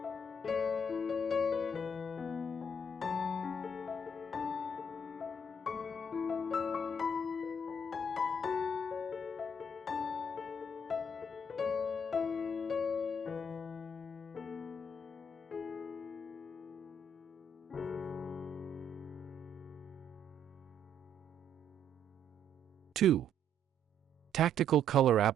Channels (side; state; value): both; normal; correlation 0.68